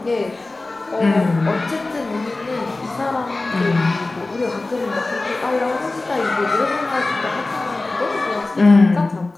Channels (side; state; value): right; quieter; 3.1 dB